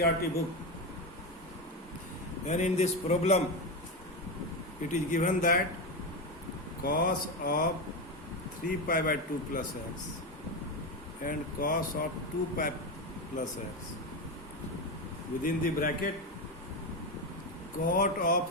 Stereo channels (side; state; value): both; normal; correlation 0.15